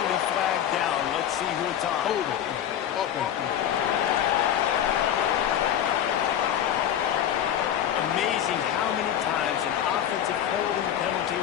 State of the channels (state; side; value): quieter; right; 10.2 dB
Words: flag down. Let's see who it's on. Amazing how many times an offensive holding penalty